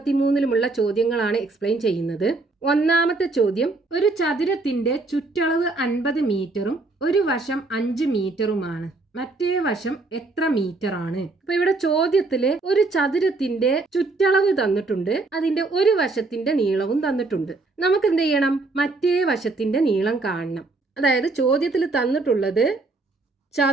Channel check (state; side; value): quieter; left; 3.4 dB